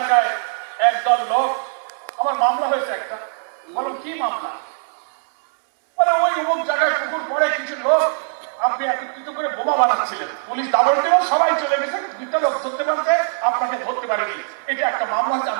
একদল লোক, আমার মামলা হয়েছে একটা। বলো কি মামলা? বলে ওই অমুক জায়গায় পুকুর পরে কিছু লোক আপনি একত্রিত করে বোমা বানাচ্ছিলেন, পুলিশ দাবর দেব, সবাই চলে গেছে, দুটা লোক ধরতে পারছে, আপনাকে ধরতে পারেনি। এটা একটা মামলা হচ্ছে,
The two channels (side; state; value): left; silent; 65 dB below the other